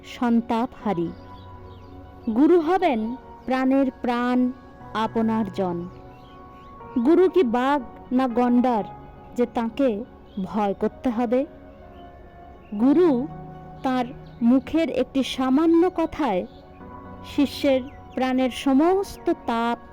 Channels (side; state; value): both; identical; correlation 1.00